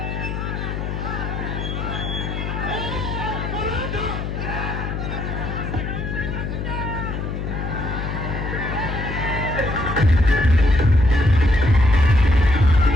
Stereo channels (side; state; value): left; noise; hum, 4 dB below the sound